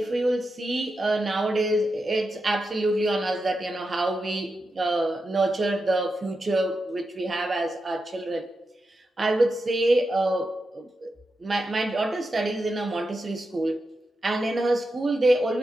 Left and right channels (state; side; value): normal; both; correlation 0.88